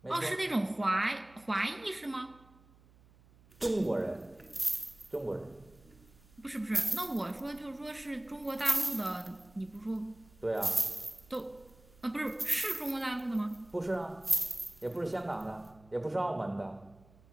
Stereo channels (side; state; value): right; noise; hum, 26 dB below the sound